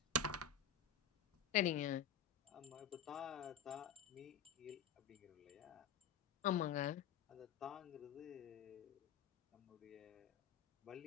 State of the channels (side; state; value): right; quieter; 6.6 dB